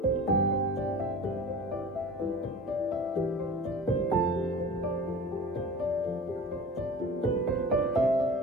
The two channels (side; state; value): both; normal; correlation 0.37